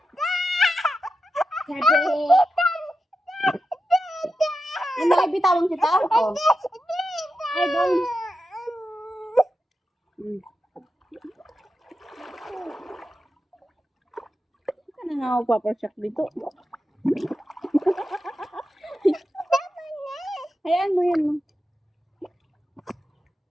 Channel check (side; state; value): both; normal; correlation 0.89